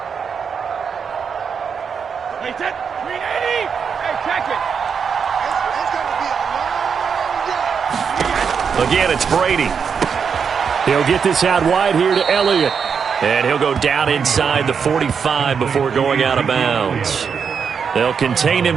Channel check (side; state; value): left; quieter; 6.5 dB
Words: Again, it's Brady. He'll get this out wide here to Elliott. And he'll go down inside the 45 before going out of bounds. They'll contain